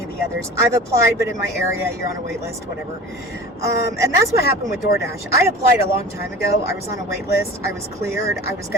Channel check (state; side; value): normal; both; correlation 0.38